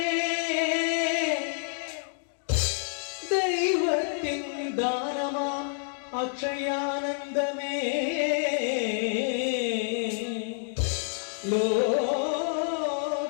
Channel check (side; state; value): right; silent; digital silence